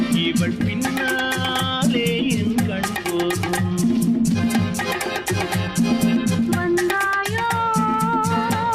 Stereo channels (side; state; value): both; identical; correlation 1.00